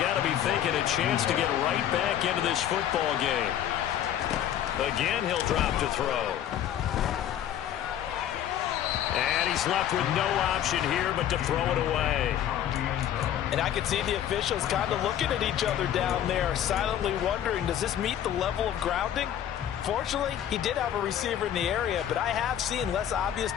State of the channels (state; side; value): quieter; right; 10.6 dB